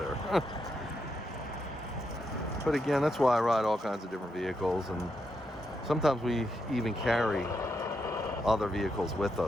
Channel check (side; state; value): both; normal; correlation 0.82